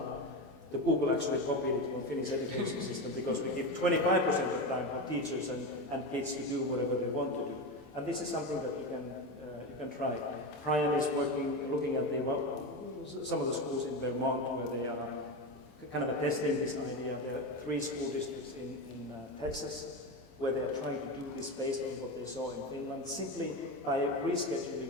The Google actually copied it from the Finnish education system because we give 25% of the time for teachers and kids to do whatever they want to do. And this is something that you can try. Brian is looking at some of the schools in Vermont where they are kind of testing this idea. There are 3 school districts in Texas where they are trying to do this based on what they saw in Finland, simply by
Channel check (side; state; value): right; late; 27 ms